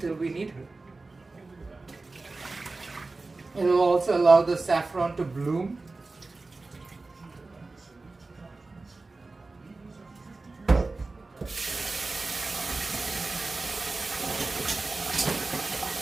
we need her. It will also allow the saffron to bloom.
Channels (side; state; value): left; quieter; 3.5 dB